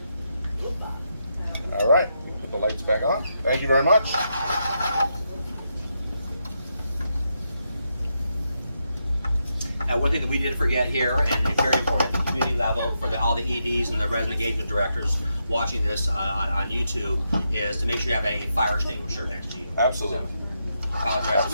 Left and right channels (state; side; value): inverted; both; correlation -0.83